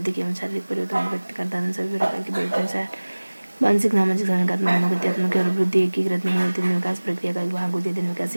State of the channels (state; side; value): inverted; both; correlation -1.00